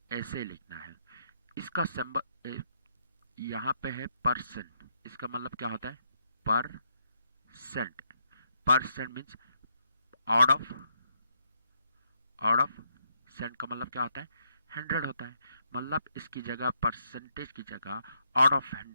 ऐसे लिखना है। इसका सिंबल यहाँ पे है परसेंट। इसका मतलब क्या होता है? Percent. Percent means out of cent का मतलब क्या होता है? 100 होता है। मतलब इसकी जगह परसेंटेज की जगह आउट ऑफ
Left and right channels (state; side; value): inverted; both; correlation -0.77